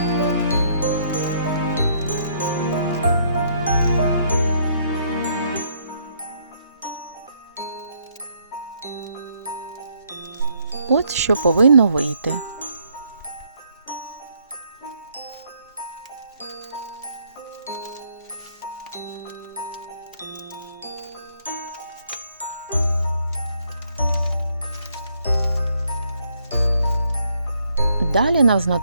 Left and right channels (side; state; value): both; inverted; correlation -0.70